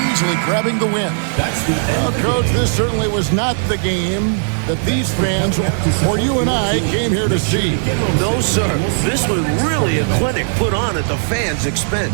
easily grabbing the win. That's the Well, end. Coach, this certainly was not the game that these fans, or you and I, came here to see. No, sir. This was really a clinic put on at the fans'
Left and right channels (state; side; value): silent; left; 68 dB below the other